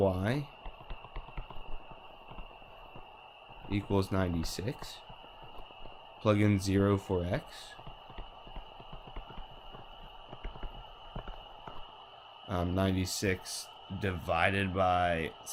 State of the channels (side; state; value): both; identical; correlation 1.00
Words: equals 96. Plug in 0 for x. Um, 96 divided by